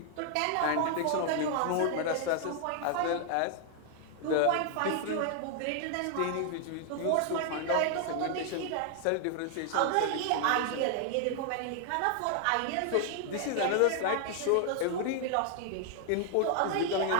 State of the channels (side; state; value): both; different; correlation 0.00